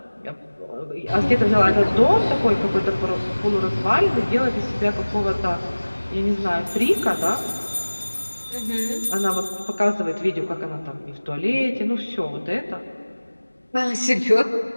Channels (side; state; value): both; inverted; correlation -1.00